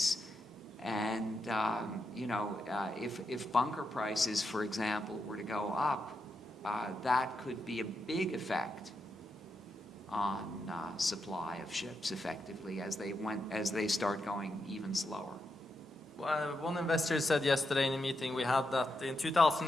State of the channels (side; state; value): both; normal; correlation 0.84